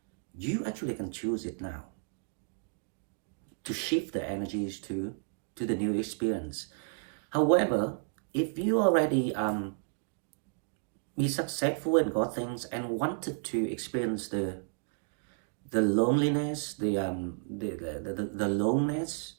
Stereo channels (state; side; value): silent; left; 56 dB below the other